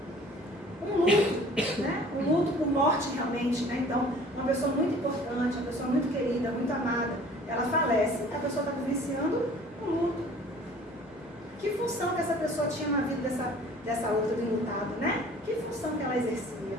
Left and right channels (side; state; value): both; normal; correlation 0.49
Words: Um luto, né? Um luto por morte realmente, né? Então, uma pessoa muito importante, uma pessoa muito querida, muito amada, ela falece, a pessoa está vivenciando um luto. Que função que essa pessoa tinha na vida dessa outra do enlutado, né? Que função que ela exercia?